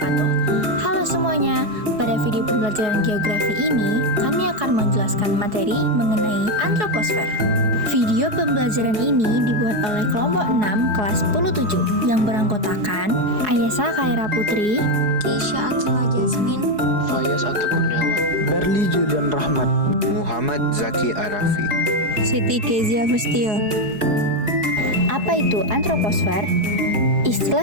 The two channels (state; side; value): late; left; 4.7 ms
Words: Halo semuanya, pada video pembelajaran geografi ini kami akan menjelaskan materi mengenai antroposfer. Video pembelajaran ini dibuat oleh kelompok 6 kelas 10-7 yang beranggotakan Ayesa Khaira Putri, Keisha Atila Jasmine, Fayaz Atau Kurniawan, Berli Julian Rahmat, Muhammad Zaki Arafi, Siti Kezia Fustio. Apa itu antroposfer?